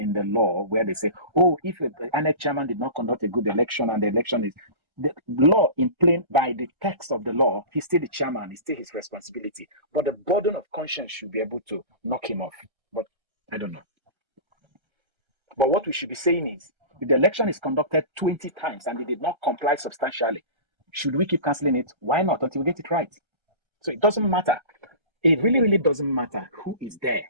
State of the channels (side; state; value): left; late; 1.3 ms